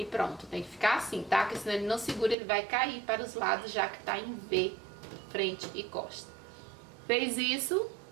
pronto, tem que ficar assim, tá? Porque senão ele não segura, ele vai cair para os lados, já que tá em V, frente e costa. Fez isso,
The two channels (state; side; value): drops out; left; at 2.4 s